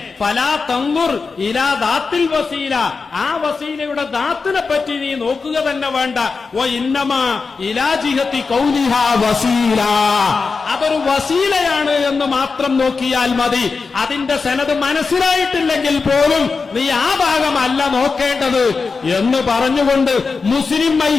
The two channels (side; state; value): right; quieter; 4.6 dB